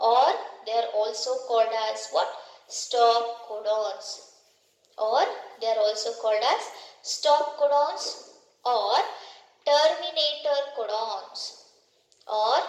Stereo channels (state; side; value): identical; both; correlation 1.00